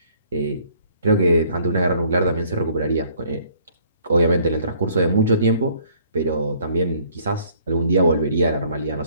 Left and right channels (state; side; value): inverted; both; correlation -0.61